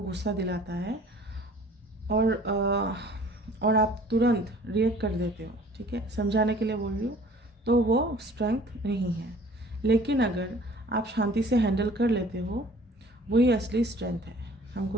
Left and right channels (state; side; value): normal; both; correlation 0.51